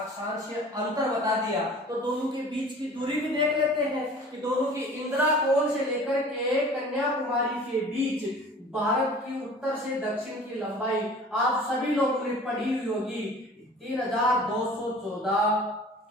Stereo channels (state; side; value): normal; both; correlation 0.45